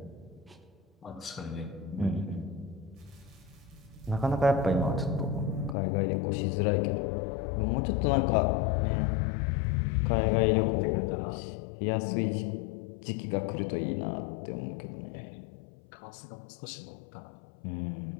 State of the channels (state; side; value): drops out; right; at 5.8 s